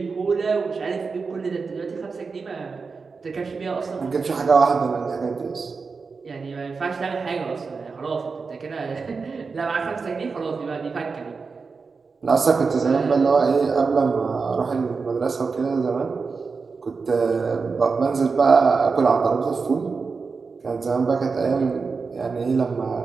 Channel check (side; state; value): left; quieter; 4.8 dB